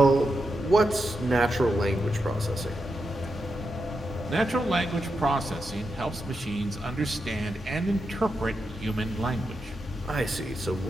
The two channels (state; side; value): normal; both; correlation 0.86